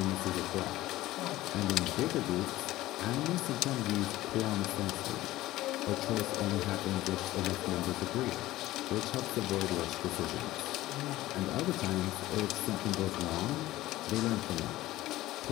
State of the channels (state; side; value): quieter; right; 16.5 dB